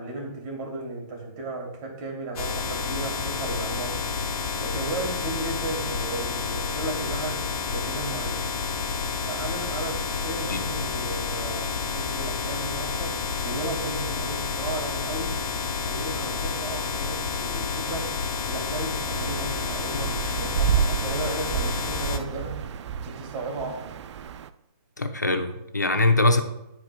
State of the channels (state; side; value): inverted; both; correlation -0.37